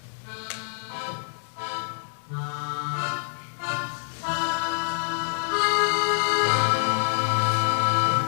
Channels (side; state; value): right; silent; 61 dB below the other